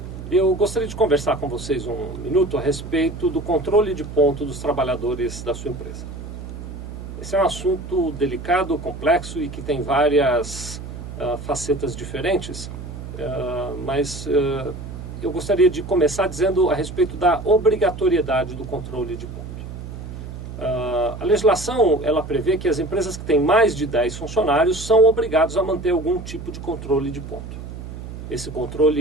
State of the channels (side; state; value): right; noise; hum, 10 dB below the sound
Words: Eu gostaria de conversar com vocês um minuto a respeito do controle de ponto dos trabalhadores da sua empresa. Esse é um assunto delicado, complexo e que tem várias facetas diferentes, mas eu gostaria de começar dizendo a respeito da obrigatoriedade do controle de ponto. A legislação ela prevê que as empresas que têm mais de 10 funcionários são obrigados a manter algum tipo de controle de ponto. Esse